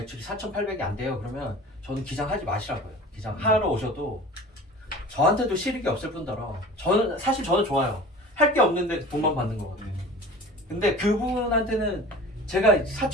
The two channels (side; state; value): both; normal; correlation 0.40